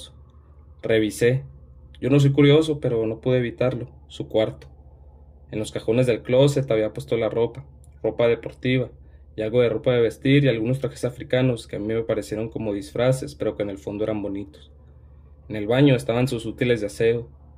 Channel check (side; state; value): both; identical; correlation 1.00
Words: Revisé. Yo no soy curioso, pero no pude evitarlo. Su cuarto. En los cajones del closet había puesto la ropa, ropa deportiva, y algo de ropa de vestir y algunos trajes africanos que a mí me parecieron como disfraces, pero que en el fondo eran bonitos. En el baño estaban sus útiles de aseo,